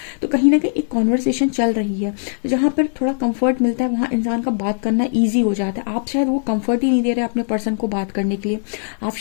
तो कहीं ना कहीं एक कॉन्वर्सेशन चल रही है। तो जहाँ पर थोड़ा कंफर्ट मिलता है वहाँ इंसान का बात करना ईजी हो जाता है। आप शायद वो कंफर्ट ही नहीं दे रहे अपने पर्सन को बात करने के लिए, आप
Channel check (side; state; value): right; silent; 62 dB below the other